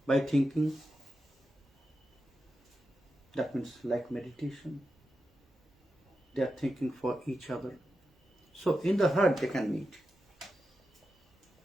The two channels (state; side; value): normal; both; correlation 0.89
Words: by thinking, that means like meditation. They are thinking for each other. So in the heart they can meet.